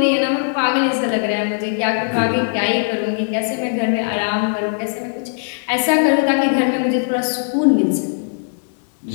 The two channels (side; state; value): right; silent; digital silence